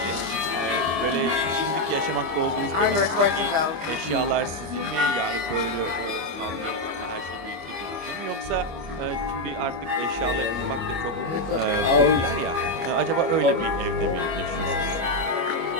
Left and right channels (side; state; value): left; late; 25 ms